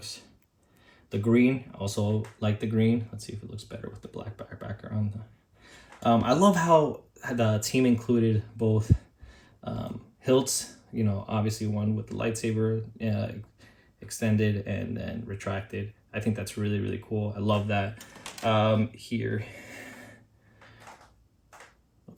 The green, also like the green. Let's see if it looks better with the black background. I love how the team included both hilts, you know, obviously one with the lightsaber extended and then retracted. I think that's really cool. I love that. Here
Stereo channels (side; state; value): both; identical; correlation 1.00